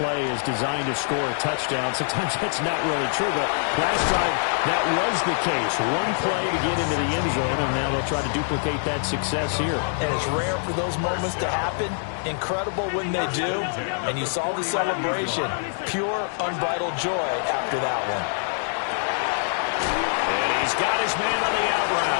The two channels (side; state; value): right; silent; digital silence